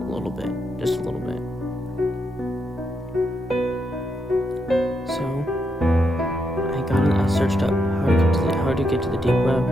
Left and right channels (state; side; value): normal; both; correlation 0.81